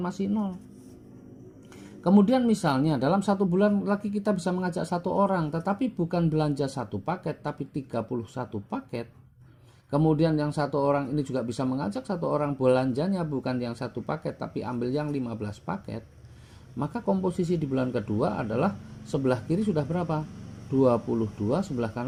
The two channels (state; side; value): identical; both; correlation 1.00